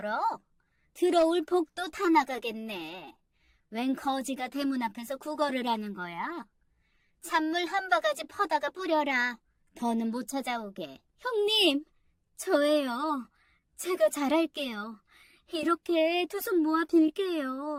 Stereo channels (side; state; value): both; identical; correlation 1.00